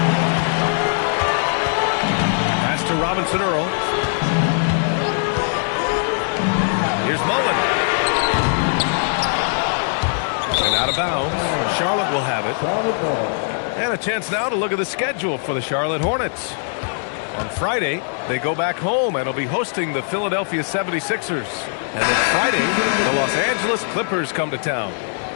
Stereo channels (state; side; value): silent; right; 65 dB below the other